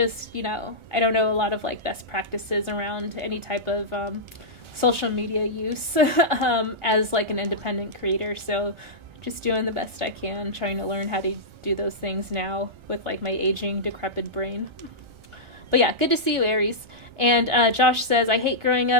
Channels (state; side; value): late; left; 1.3 ms